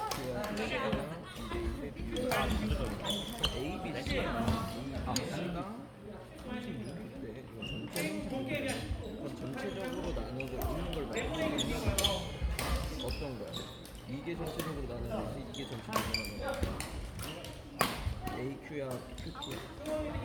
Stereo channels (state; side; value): identical; both; correlation 1.00